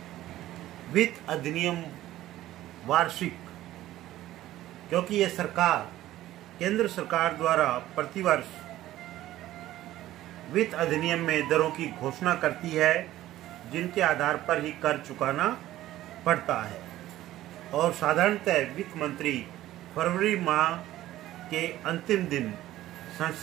वित्त अधिनियम वार्षिक, क्योंकि यह सरकार केंद्र सरकार द्वारा प्रतिवर्ष वित्त अधिनियम में दरों की घोषणा करती है जिनके आधार पर ही कर चुकाना पड़ता है और साधारणतः वित्त मंत्री फरवरी माह के अंतिम दिन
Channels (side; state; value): left; quieter; 14.6 dB